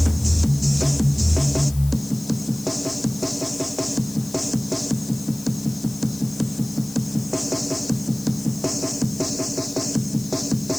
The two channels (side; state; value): left; noise; hiss, 15 dB below the sound